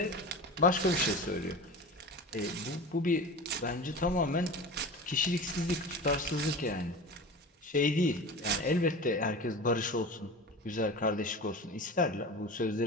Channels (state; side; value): normal; both; correlation 0.32